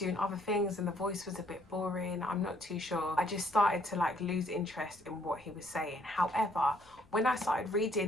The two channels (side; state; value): left; noise; rumble, 27 dB below the sound